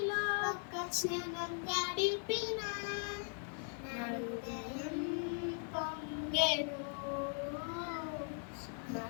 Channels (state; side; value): silent; right; 51 dB below the other